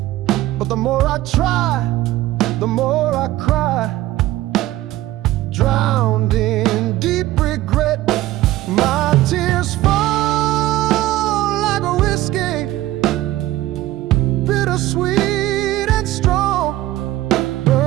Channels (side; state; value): left; quieter; 15.8 dB